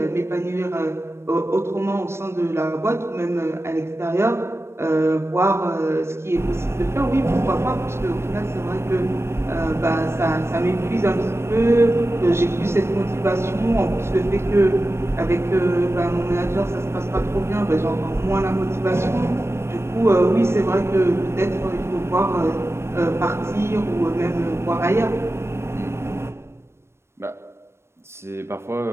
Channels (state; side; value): late; left; 0.13 ms